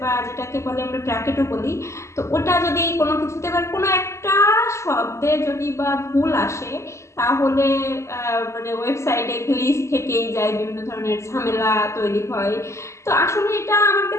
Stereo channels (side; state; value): right; late; 0.14 ms